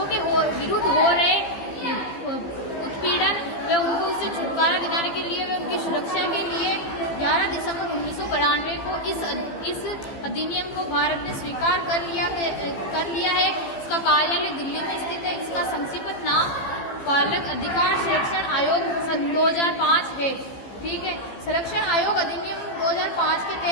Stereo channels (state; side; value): late; right; 15 ms